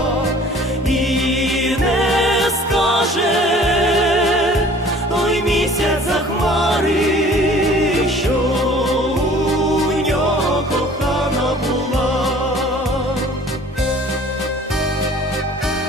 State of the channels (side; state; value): both; normal; correlation 0.50